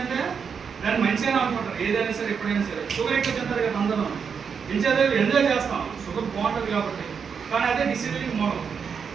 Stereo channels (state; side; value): quieter; left; 6.4 dB